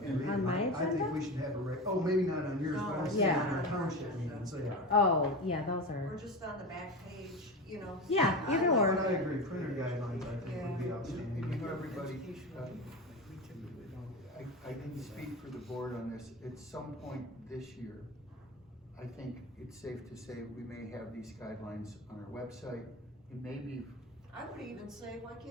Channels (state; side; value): normal; both; correlation 0.24